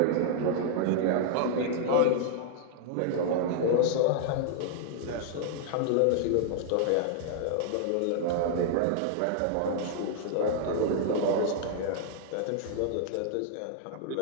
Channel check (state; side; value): different; both; correlation -0.01